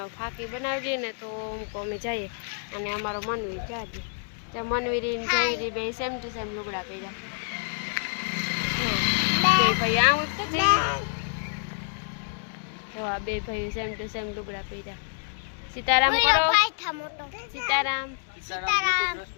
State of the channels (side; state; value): right; silent; 60 dB below the other